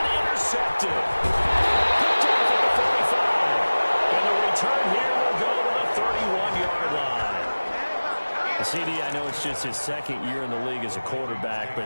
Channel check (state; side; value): inverted; both; correlation -1.00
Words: intercepted. Picked off at the 45. And the return here will go to the 31-yard line. just his second year in the league as a quarterback,